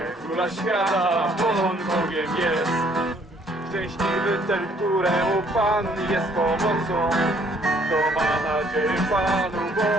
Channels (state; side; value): normal; both; correlation 0.63